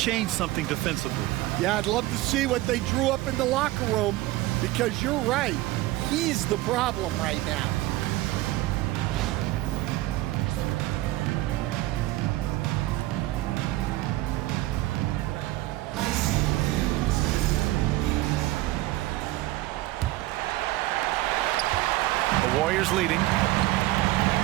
something defensively. Yeah, I'd love to see what they drew up in the locker room, because you're right. He's the problem right now. The Warriors leading.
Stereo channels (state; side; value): quieter; left; 17.5 dB